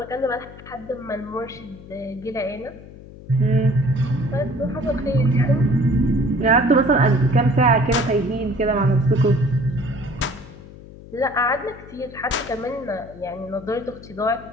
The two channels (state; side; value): noise; left; hum, 17 dB below the sound